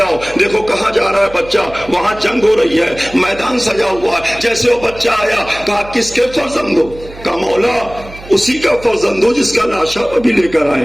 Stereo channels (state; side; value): noise; right; hum, 17 dB below the sound